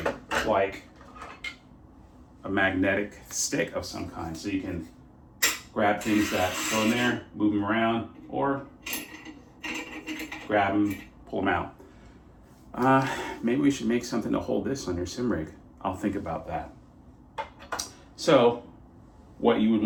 like a magnetic stick of some kind, so you can grab things that go in there, move them around, or grab them, pull them out. Maybe we should make something to hold this on your sim rig. I'll think about that. So what you would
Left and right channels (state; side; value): identical; both; correlation 1.00